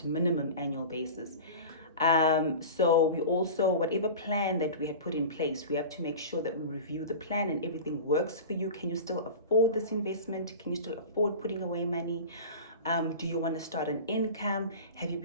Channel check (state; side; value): inverted; both; correlation -0.33